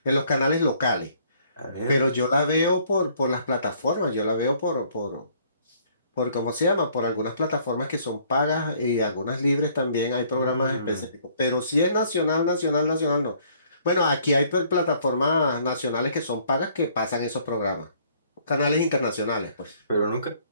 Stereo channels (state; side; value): inverted; both; correlation -0.62